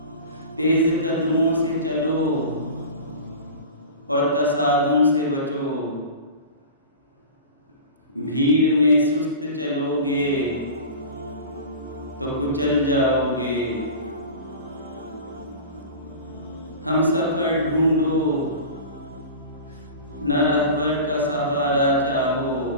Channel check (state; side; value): inverted; both; correlation -0.34